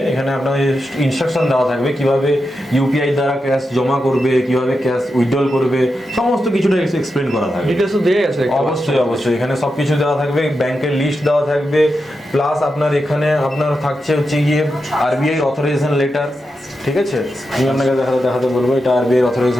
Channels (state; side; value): normal; both; correlation 0.88